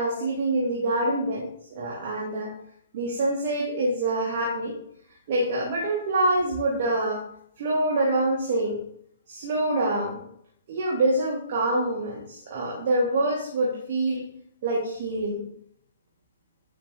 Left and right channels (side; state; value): both; inverted; correlation -0.61